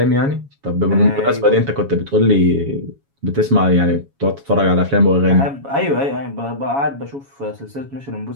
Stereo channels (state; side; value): late; left; 7.2 ms